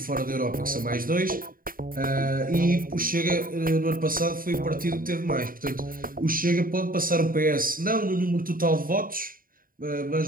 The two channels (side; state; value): left; late; 0.41 ms